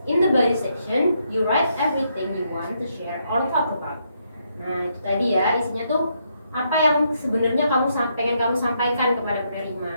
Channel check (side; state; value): both; inverted; correlation -0.76